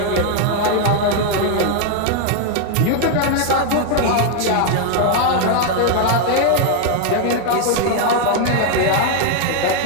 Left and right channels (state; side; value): different; both; correlation 0.00